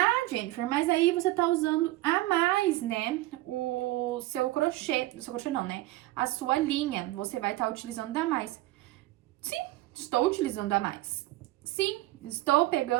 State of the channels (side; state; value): left; quieter; 17.9 dB